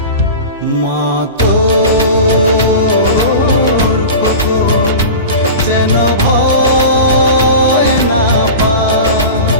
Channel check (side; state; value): both; inverted; correlation -0.31